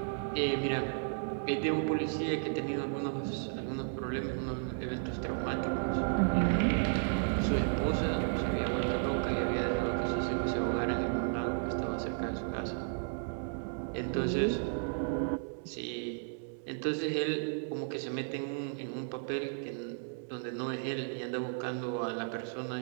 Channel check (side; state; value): left; silent; digital silence